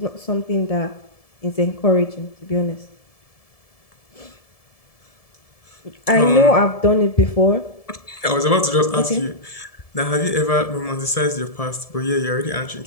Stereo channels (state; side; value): late; right; 1.7 ms